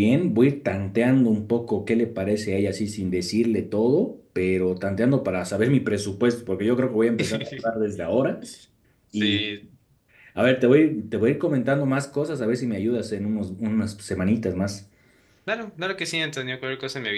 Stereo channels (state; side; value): identical; both; correlation 1.00